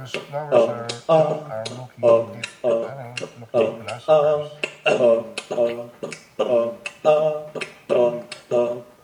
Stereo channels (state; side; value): identical; both; correlation 1.00